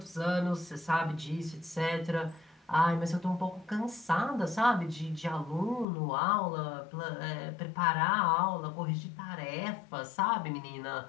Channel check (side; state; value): right; drops out; at 5.9 s